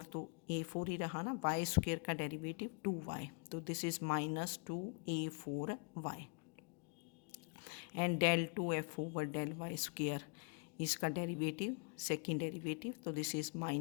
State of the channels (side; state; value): right; quieter; 38.5 dB